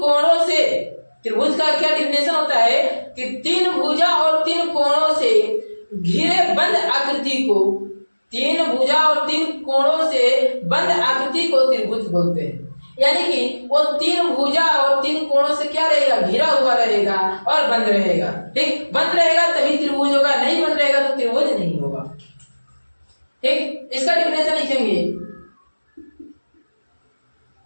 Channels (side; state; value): both; inverted; correlation -1.00